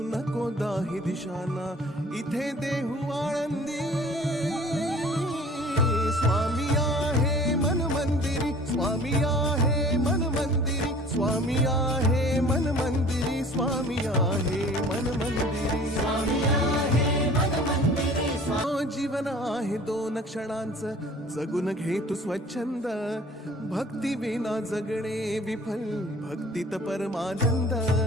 नको दाही दिशांना, इथे देहू आळंदी. स्वामी आहे मन मंदिरी, स्वामी आहे मन मंदिरी, स्वामी आहे मन मंदिरी, स्वामी आहे मन मंदिरी. स्वामी आहे मन मंदिरी. जीवन आहे 2 क्षणांचं, जगून घे तू स्वच्छंद. भक्ती विना जगणे विफल, भक्तीत परमानंद.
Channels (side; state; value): both; normal; correlation 0.48